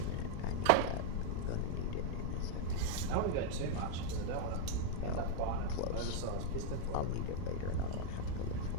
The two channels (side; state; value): both; different; correlation 0.00